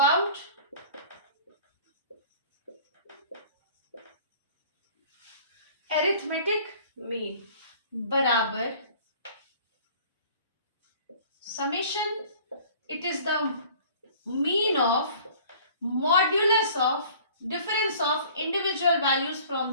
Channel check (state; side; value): inverted; both; correlation -0.49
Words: arithmetic mean बराबर summation, it is the mean of modulus of difference of individual values from